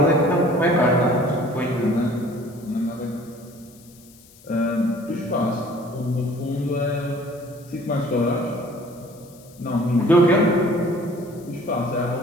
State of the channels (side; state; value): left; noise; hiss, 25 dB below the sound